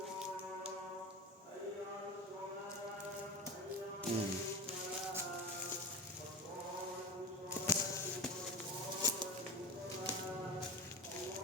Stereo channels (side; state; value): both; normal; correlation 0.27